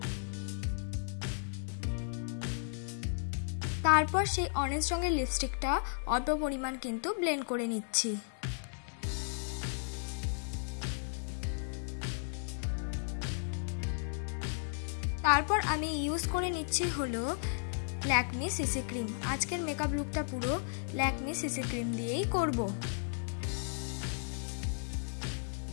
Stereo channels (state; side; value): silent; right; 55 dB below the other